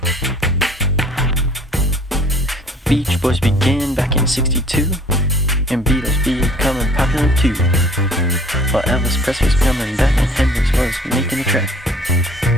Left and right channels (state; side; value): normal; both; correlation 0.53